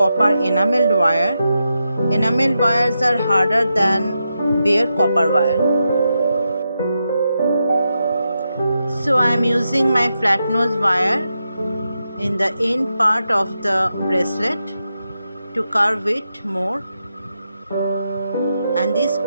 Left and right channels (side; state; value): both; inverted; correlation -0.87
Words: enameled wire. Enameled wires are harder than bare copper wire. So I am using my flat nose wire in the end part of the bracelet to carve it more, and this